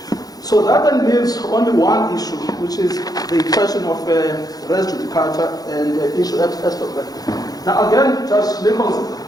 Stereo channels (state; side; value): late; right; 0.18 ms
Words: So that then leaves only one issue, which is the question of res judicata and issue extra. Now again, Judge Nichols,